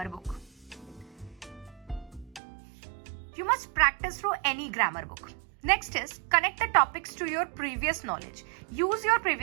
You must practice through any grammar book. Next is connect the topics to your previous knowledge. Use your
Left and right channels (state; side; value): drops out; left; at 2.4 s